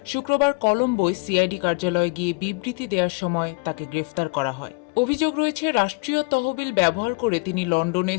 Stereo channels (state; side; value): quieter; right; 30.3 dB